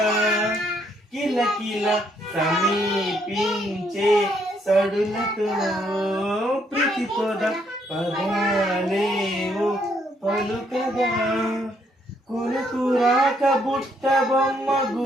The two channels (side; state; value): both; normal; correlation 0.71